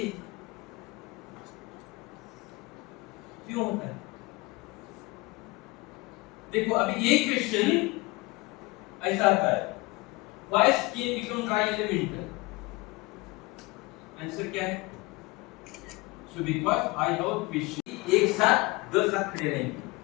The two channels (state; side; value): quieter; right; 23.5 dB